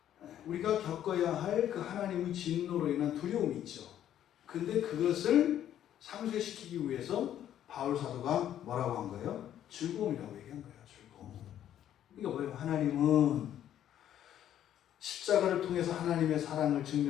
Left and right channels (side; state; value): right; quieter; 11.0 dB